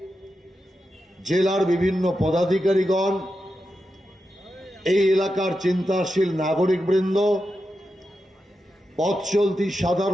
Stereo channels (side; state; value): both; normal; correlation 0.88